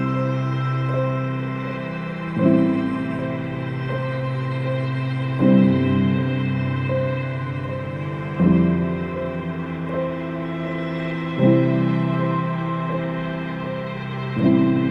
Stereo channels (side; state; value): both; identical; correlation 1.00